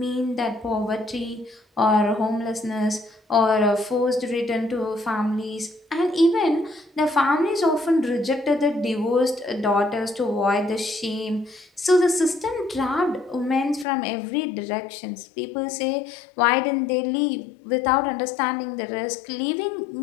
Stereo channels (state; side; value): drops out; right; at 13.9 s